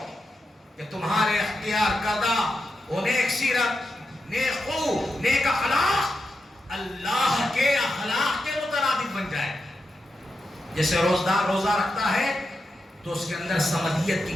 کہ تمہارے اختیار کردہ وہ نیک سیرت، نیک خو، نیک اخلاق اللہ کے اخلاق کے مترادف بن جائے۔ جیسے روزدار روزہ رکھتا ہے تو اس کے اندر سمدیت کی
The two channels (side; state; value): both; normal; correlation 0.88